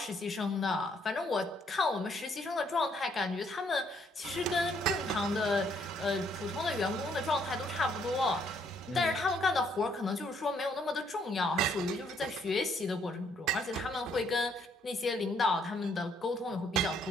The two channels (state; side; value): normal; both; correlation 0.69